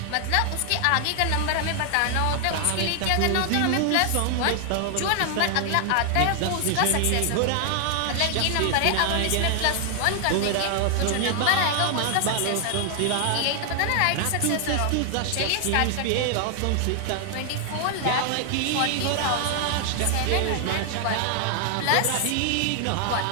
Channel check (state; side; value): different; both; correlation 0.00